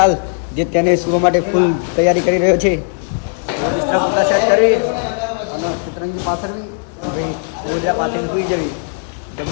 જે તેને સુવા માટે ફૂલ તૈયારી કરી રહ્યો છે. સેટ કરી અને સતરંગી પાથરવી, હવે ગોદરા પાથરીને સૂઈ જવી.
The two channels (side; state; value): right; silent; 62 dB below the other